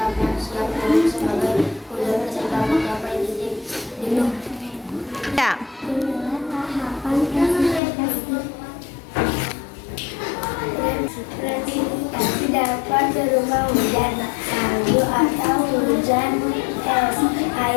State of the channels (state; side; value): drops out; right; at 7.8 s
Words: yang siap turun sebagai hujan ketika mencapai titik jenuh. Ya. Presipitas dapat berupa hujan salju atau hujan es,